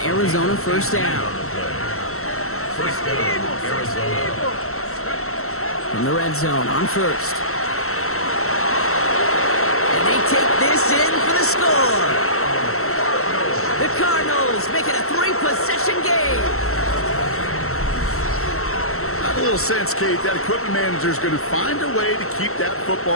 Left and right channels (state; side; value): late; right; 0.63 ms